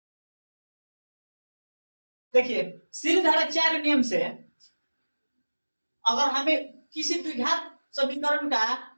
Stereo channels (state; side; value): inverted; both; correlation -1.00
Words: देखिए, श्रीधराचार्य नियम से अगर हमें किसी द्विघात समीकरण का